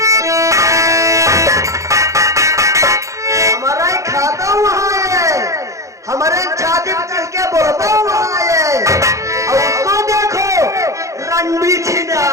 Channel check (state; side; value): late; left; 0.15 ms